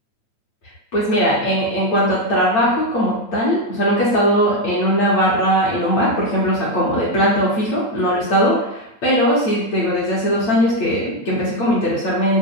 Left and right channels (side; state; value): right; late; 8.8 ms